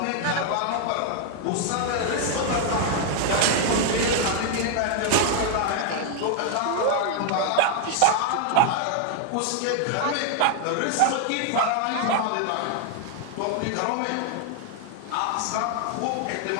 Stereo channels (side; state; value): both; different; correlation 0.00